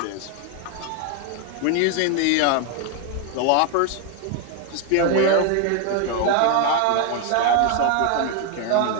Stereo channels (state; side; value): different; both; correlation 0.01